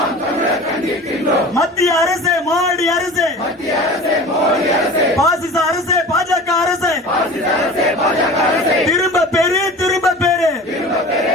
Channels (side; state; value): both; normal; correlation 0.38